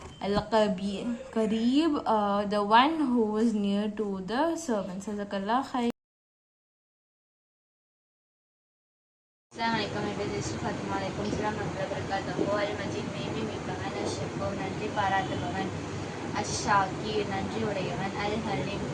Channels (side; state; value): both; identical; correlation 1.00